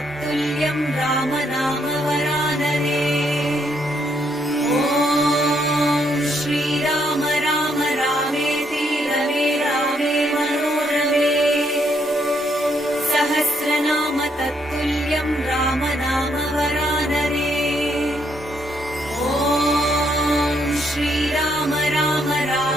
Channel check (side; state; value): both; normal; correlation 0.73